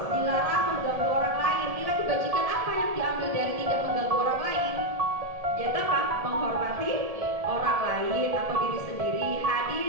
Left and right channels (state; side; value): late; left; 1.7 ms